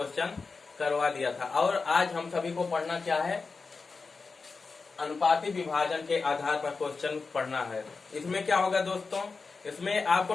करवा दिया था और आज हम सभी को पढ़ना क्या है, अनुपाती विभाजन के आधार पर क्वेश्चन पढ़ना है। इसमें क्या होगा दोस्तों, इसमें आपको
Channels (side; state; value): right; quieter; 4.4 dB